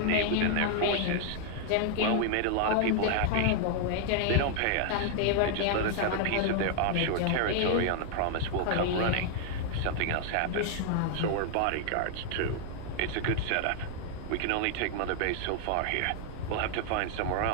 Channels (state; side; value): different; both; correlation 0.00